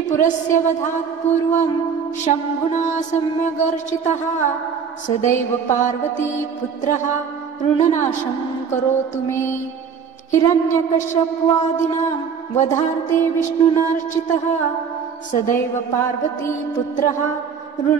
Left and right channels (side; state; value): left; quieter; 6.6 dB